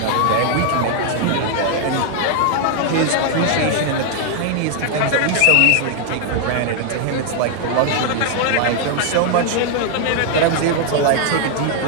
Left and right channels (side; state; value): both; different; correlation 0.00